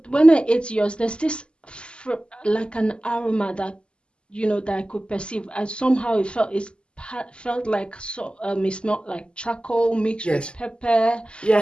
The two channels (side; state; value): right; late; 0.052 ms